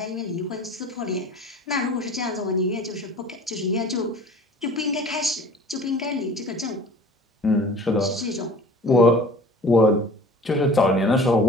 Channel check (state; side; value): normal; both; correlation 0.44